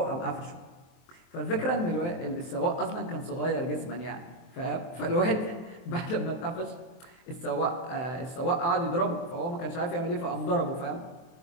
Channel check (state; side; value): late; right; 23 ms